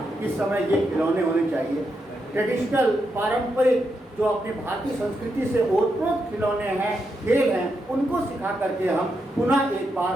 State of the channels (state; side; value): normal; both; correlation 0.83